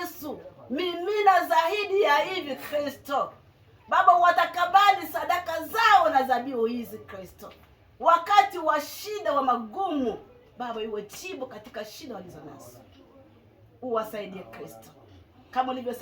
mimina zaidi ya hivi Kristo. Baba watakabali sadaka zao na dhabihu hizi Kristo. Wakati wa shida wa magumu, Baba iwe jibu katika shida walizonazo. Uwasaidie Kristo. Kama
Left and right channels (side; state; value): both; identical; correlation 1.00